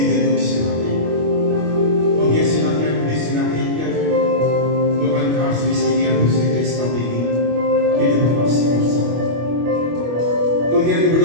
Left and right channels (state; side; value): late; left; 25 ms